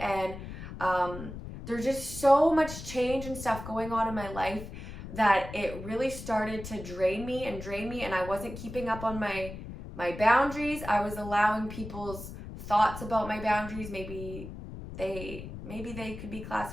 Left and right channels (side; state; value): left; noise; rumble, 10 dB below the sound